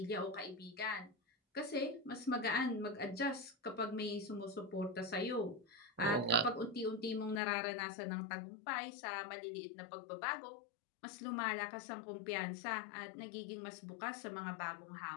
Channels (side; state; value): right; drops out; at 7.4 s